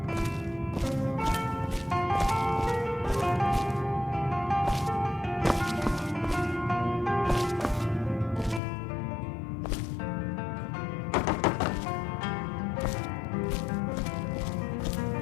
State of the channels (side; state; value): right; drops out; at 8.6 s